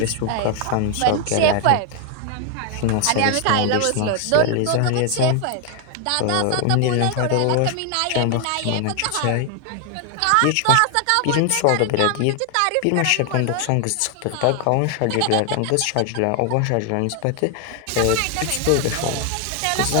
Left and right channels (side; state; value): both; different; correlation 0.00